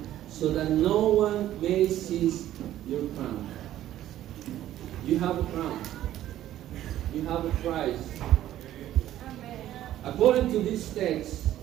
so that no one may seize your crown. You have a crown. You have a prize. According to this text,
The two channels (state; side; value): quieter; left; 12.9 dB